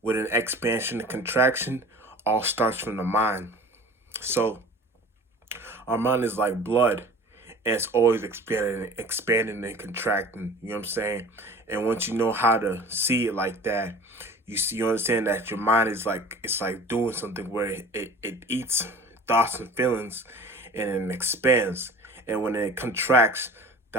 an expansion and contraction all starts from the mind. So our mind is like blood, and it's always expanding and contracting, you know what I'm saying? And once you know how to see it like that, you understand that your mind is like, it's like doing something where it eats thoughts and feelings and it expands. And when it contracts,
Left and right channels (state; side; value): normal; both; correlation 0.42